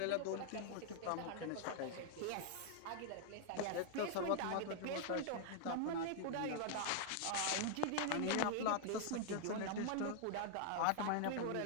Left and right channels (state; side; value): different; both; correlation -0.01